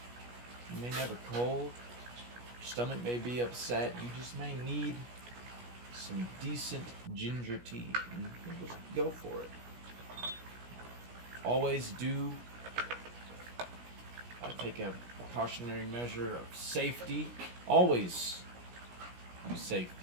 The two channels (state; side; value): late; left; 17 ms